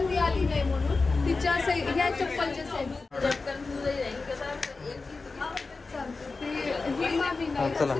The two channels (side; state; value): right; quieter; 3.9 dB